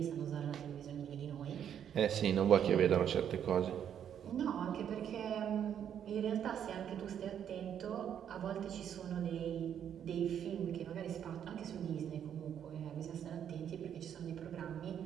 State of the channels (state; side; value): quieter; left; 9.1 dB